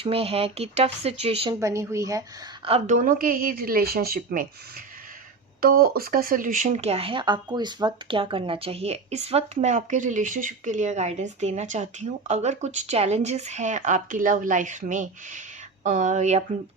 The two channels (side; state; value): left; quieter; 4.1 dB